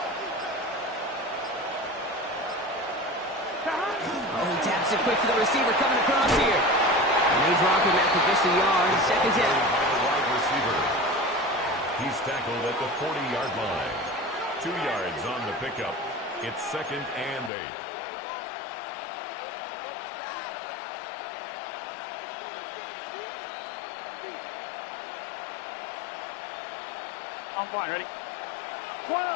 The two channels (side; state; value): right; drops out; at 17.5 s